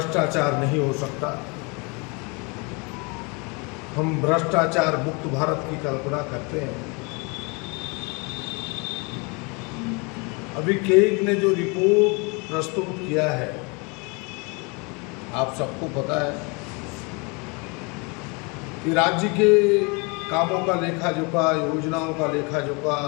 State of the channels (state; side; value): quieter; right; 30.3 dB